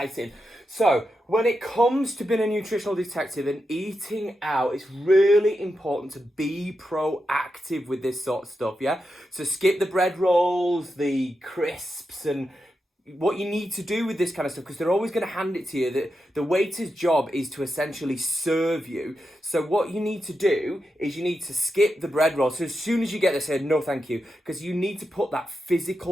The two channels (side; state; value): both; normal; correlation 0.88